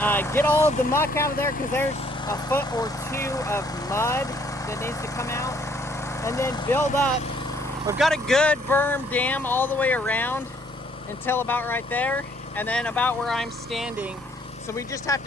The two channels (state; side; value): normal; both; correlation 0.64